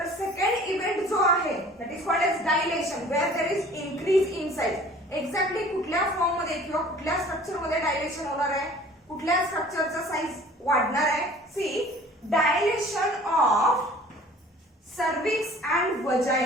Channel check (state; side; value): normal; both; correlation 0.48